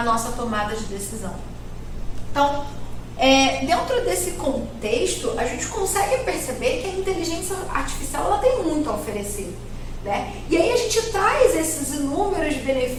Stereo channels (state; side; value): identical; both; correlation 1.00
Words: nossa tomada de decisão. Então, dentro desse contexto, a gente consegue perceber que a inteligência artificial ela tem muito a oferecer, né? E aí a gente traz esses inúmeros